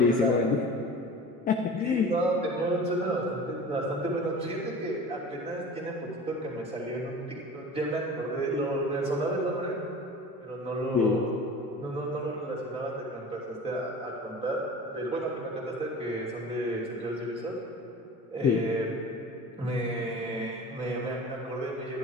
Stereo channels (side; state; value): both; normal; correlation 0.38